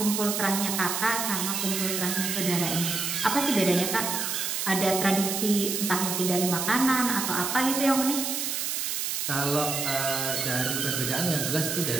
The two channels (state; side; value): noise; right; hiss, 1 dB below the sound